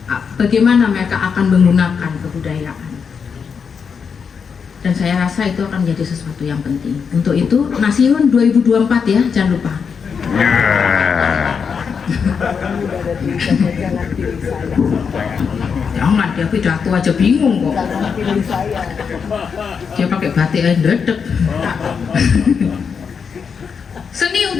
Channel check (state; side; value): quieter; right; 6.2 dB